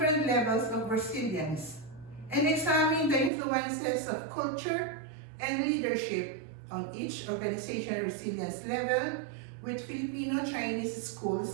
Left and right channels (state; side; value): drops out; left; at 3.3 s